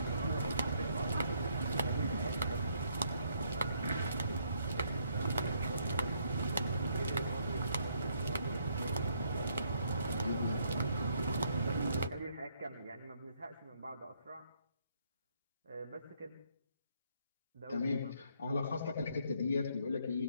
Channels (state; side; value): inverted; both; correlation -0.71